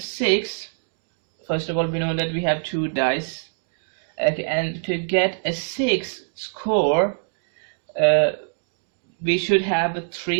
first of all, we know that we have 2 dice. Okay, and to get a 6 score, we should have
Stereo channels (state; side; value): silent; left; 63 dB below the other